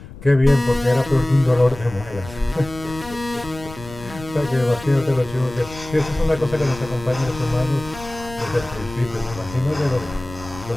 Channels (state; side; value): noise; left; rumble, 15 dB below the sound